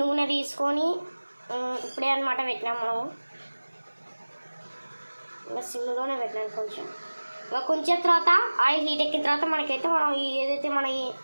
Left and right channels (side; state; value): both; inverted; correlation -1.00